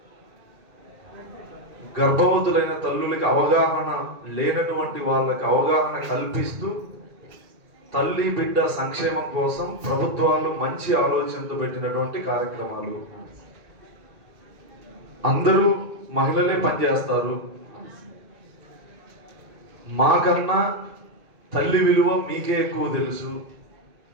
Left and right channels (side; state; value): left; late; 2.3 ms